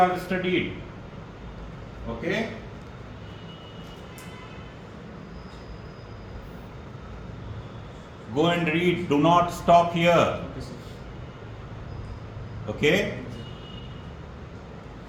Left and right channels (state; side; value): identical; both; correlation 1.00